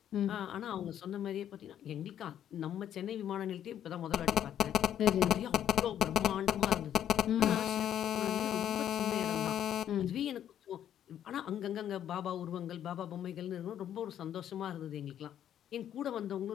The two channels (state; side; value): quieter; right; 10.4 dB